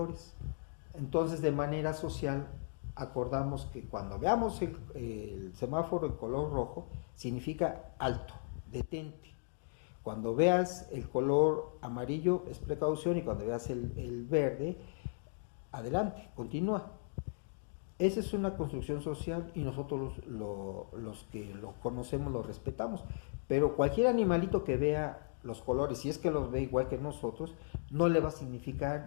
Entonces, de manera social, acordamos que cuando veamos el semáforo en color rojo, significa alto, detente. Cuando veas el color amarillo es precaución y cuando veas el verde, adelante, continúa. Esa es una construcción social y nosotros los que lo conocemos lo respetamos. Pero cualquier animalito que vea los colores, si es que los ve igual que nosotros, no le va a significar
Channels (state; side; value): silent; right; digital silence